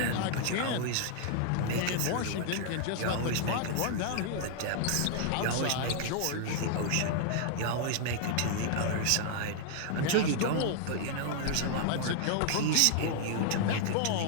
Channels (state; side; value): different; both; correlation 0.00